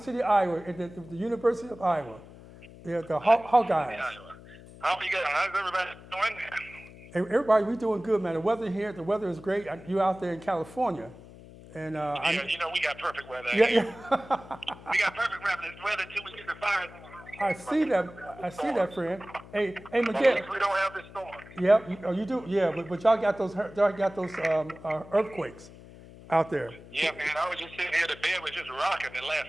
City, Iowa, at the University of Iowa. Yeah, the Hawkeyes. Iowa. How you guys? How's everybody doing? Everybody, we doing good, man. The weather is great. You out there in California, and Yeah, we got perfect weather yeah, here. yeah. We got perfect weather till we get the fires. I see that, friend. Hey, At Miguel. least we don't have this storm. Yeah, you do. Yeah, but y'all got those earthquakes out there. Yeah, man. I was just sitting here. The bed was just rocking and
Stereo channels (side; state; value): left; noise; hum, 19 dB below the sound